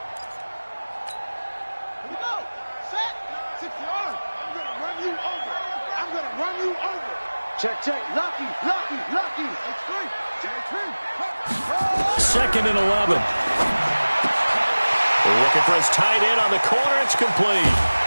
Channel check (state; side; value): inverted; both; correlation -1.00